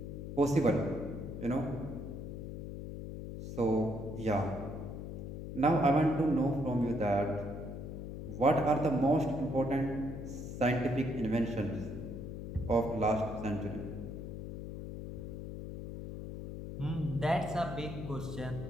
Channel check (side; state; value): left; noise; hum, 8 dB below the sound